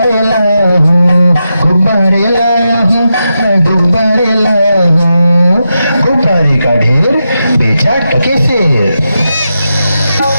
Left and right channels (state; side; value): inverted; both; correlation -0.88